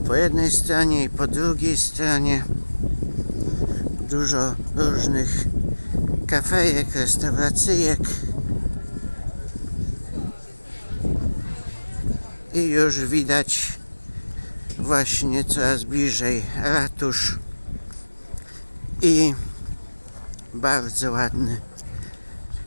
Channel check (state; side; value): inverted; both; correlation -1.00